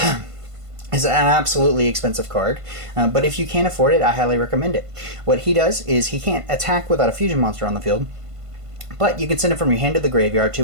It's an absolutely expensive card, but if you can't afford it, I highly recommend it. What he does is he can't attack without a fusion monster on the field, but you can send it from your hand to the graveyard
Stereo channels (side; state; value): left; late; 1.5 ms